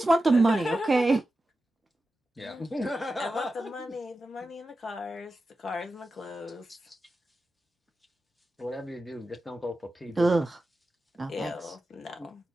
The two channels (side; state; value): both; normal; correlation 0.92